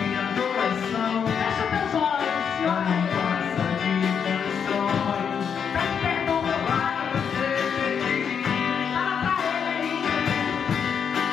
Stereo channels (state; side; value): quieter; right; 7.2 dB